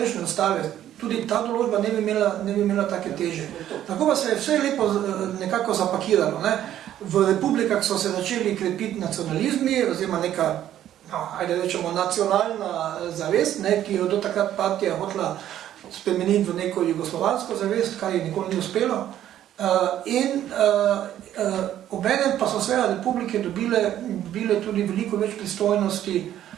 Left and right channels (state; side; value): quieter; left; 11.7 dB